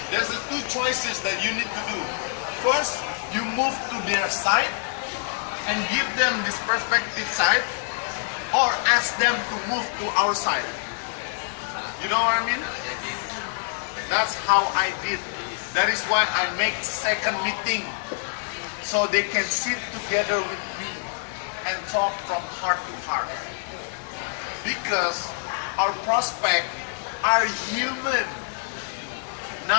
there's the two choices that you need to do. First, you move to their side and give them this perspective side, or ask them to move to our side. You know what I mean? That's how I did. That is why I make second meeting, so they can sit together with me and talk from heart to heart. Because our prospects are human,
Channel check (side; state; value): right; silent; 61 dB below the other